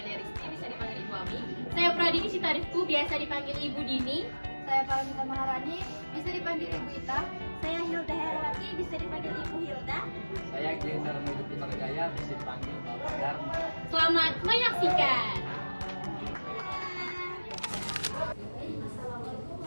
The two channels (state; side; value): inverted; both; correlation -1.00